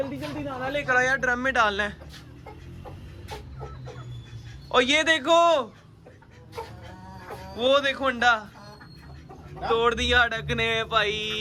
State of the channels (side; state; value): both; identical; correlation 1.00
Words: जल्दी दाना लेकर आया, ड्रम में डालना है। और ये देखो, वो देखो अंडा तोड़ दिया डक ने भाई।